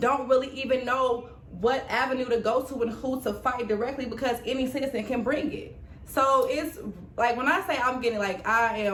really even know what avenue to go to and who to fight directly, because any citizen can bring it. So it's like, when I say I'm getting I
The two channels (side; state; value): both; identical; correlation 1.00